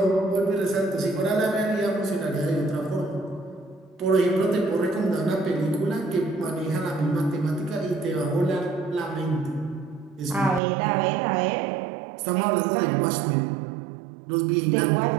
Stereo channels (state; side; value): drops out; left; at 10.6 s